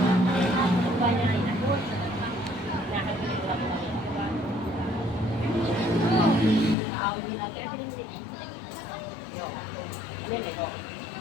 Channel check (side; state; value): right; drops out; at 6.8 s